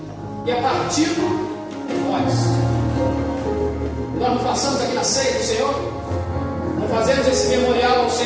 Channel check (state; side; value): identical; both; correlation 1.00